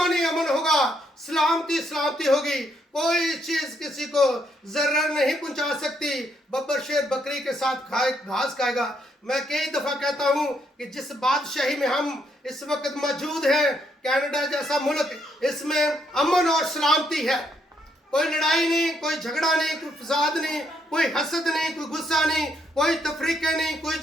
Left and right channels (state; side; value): normal; both; correlation 0.74